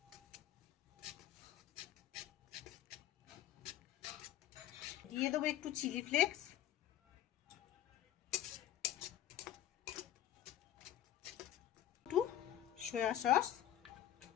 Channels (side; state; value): right; quieter; 12.0 dB